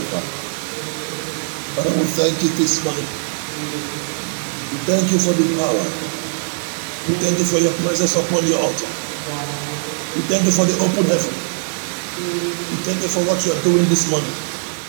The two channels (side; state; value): left; silent; digital silence